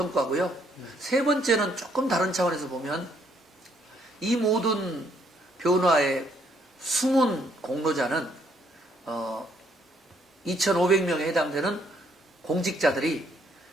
세 번째는 조금 다른 차원에서 보면 이 모든 변화의 숨은 공로자는 2,500명에 해당되는 공직자들이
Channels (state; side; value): normal; both; correlation 0.69